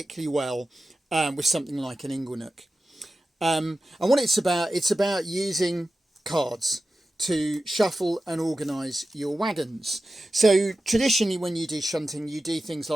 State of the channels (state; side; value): normal; both; correlation 0.94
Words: well with something like an inglenook. And what it's about using cards to shuffle and organise your wagons. So traditionally when you do shunting, you do things